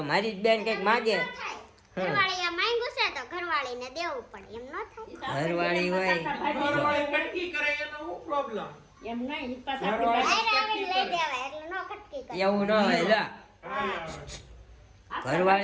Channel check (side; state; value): both; identical; correlation 1.00